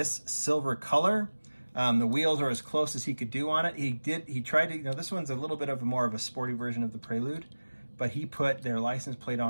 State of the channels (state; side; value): inverted; both; correlation -1.00